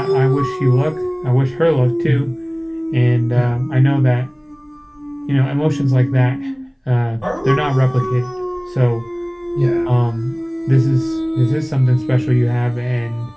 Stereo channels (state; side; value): identical; both; correlation 1.00